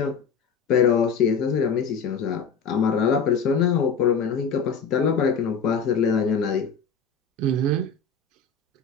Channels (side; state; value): right; quieter; 5.3 dB